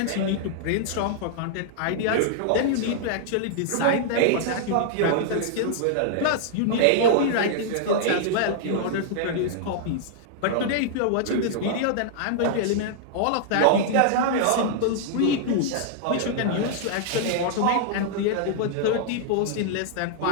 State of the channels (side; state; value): both; different; correlation -0.01